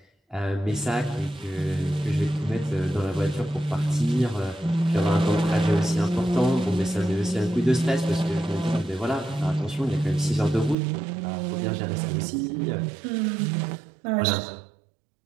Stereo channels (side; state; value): left; drops out; at 10.8 s